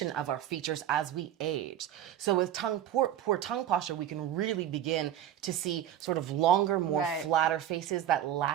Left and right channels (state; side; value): quieter; left; 11.4 dB